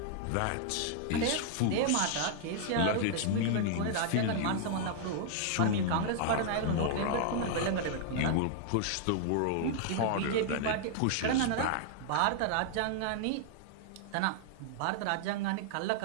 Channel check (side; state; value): both; different; correlation -0.01